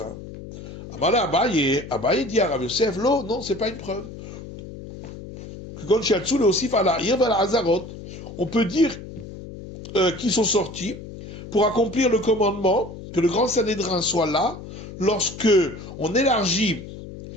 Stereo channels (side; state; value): left; noise; hum, 13 dB below the sound